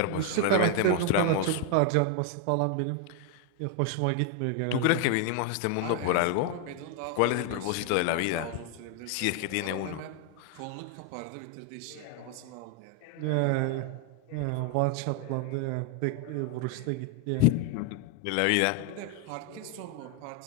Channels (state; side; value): different; both; correlation 0.01